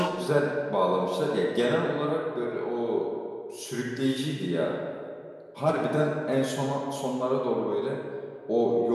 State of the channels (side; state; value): both; identical; correlation 1.00